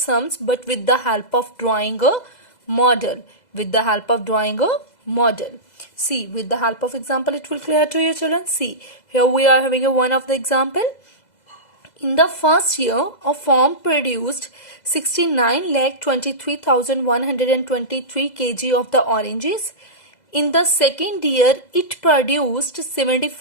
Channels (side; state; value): right; late; 2.0 ms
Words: but with the help of drawing a model. See, with the help of example it will clear to you children. See, here we are having a one of the example. In the first year, a farm produced 69,23,123 kg of the oranges. In the second year, it produced